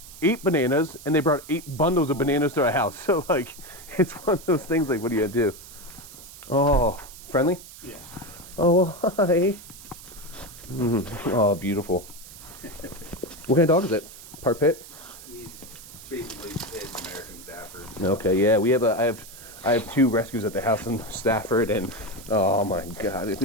8 bananas, and they brought 8 bundles of bananas to our house. So like, it's one of those things. Like, what do you do? Oh, friendly? Yeah. Oh, hi. Oh, beautiful. What kind of dog is it? Part pit? He's basically his American Stafford. Okay, yeah. I have 2 rescues at the house in Stafford, and oh my God,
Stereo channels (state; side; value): noise; right; hiss, 17 dB below the sound